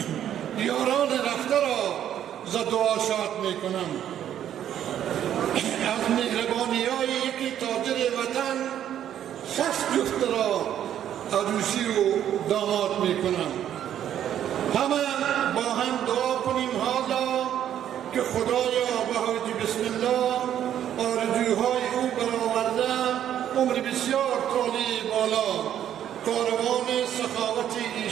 یاران رفته را ز دعا شاد می کنم. از مهربانی های یکی تاجر وطن 60 جفت را عروسی و داماد می کنم. همه با هم دعا کنیم حالا که خدایا به حاج بسم الله آرزوهای او برآورده عمر بسیار طالی بالا، کاروان سخاوت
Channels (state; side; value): quieter; left; 10.5 dB